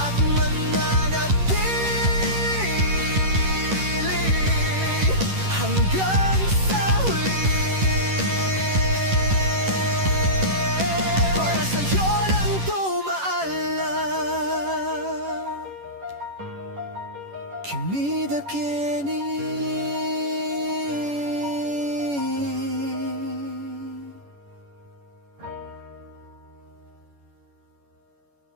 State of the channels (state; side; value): late; left; 11 ms